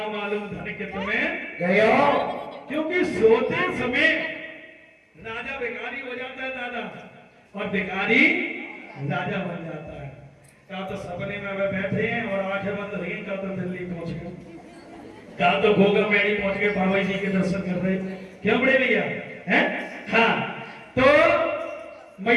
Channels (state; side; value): identical; both; correlation 1.00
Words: मालूम धन के तुम्हें गयो। क्योंकि सोते समय राजा भिखारी हो जाता है दादा, और भिखारी राजा बन जाता है। कहा तो सपने में वे बैठे हैं और आंखें बंद रही, कहा तो दिल्ली पहुंच गए, कहा तो गोगा मेड़ी पहुंच गए, बाबा जी के दर्शन कर रहे। क्यों बड़े भैया हैं? हाँ, तो